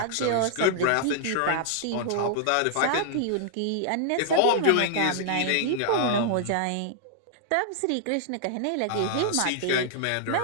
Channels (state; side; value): different; both; correlation -0.01